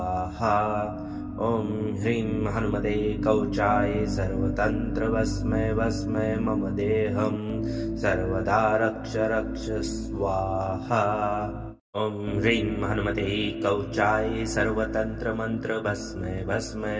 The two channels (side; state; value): both; identical; correlation 1.00